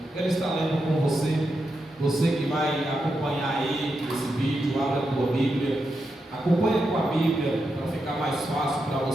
Quero estar lendo com você que vai acompanhar aí esse vídeo, abra a tua Bíblia, acompanha com a Bíblia para ficar mais fácil para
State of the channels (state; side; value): normal; both; correlation 0.86